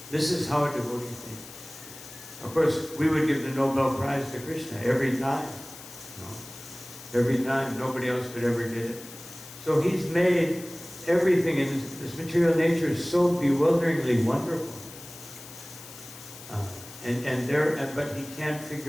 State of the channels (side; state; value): left; noise; hiss, 16 dB below the sound